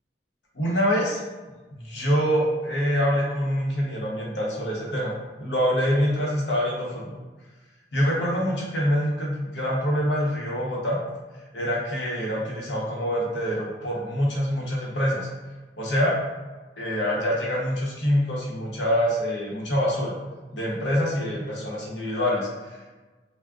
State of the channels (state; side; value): normal; both; correlation 0.52